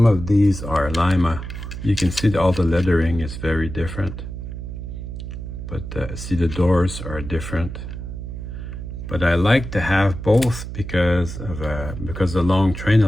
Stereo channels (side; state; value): right; noise; hum, 8 dB below the sound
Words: of these are Lima. You can see that all the lettering is very different, but see the doors are different. But I like to have both because the long train, I